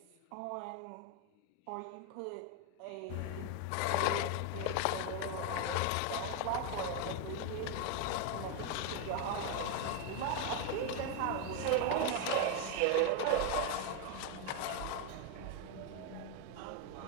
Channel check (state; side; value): different; both; correlation 0.01